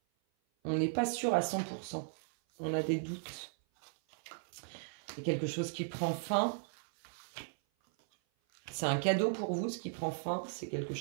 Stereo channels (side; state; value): left; silent; 53 dB below the other